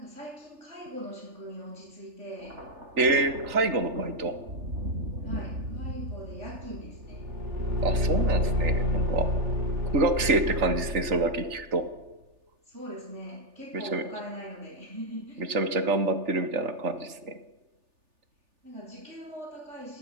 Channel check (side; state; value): left; late; 3.4 ms